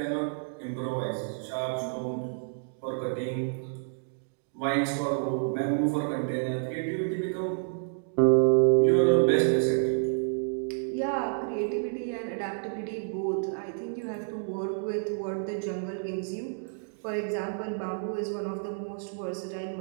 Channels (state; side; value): silent; left; digital silence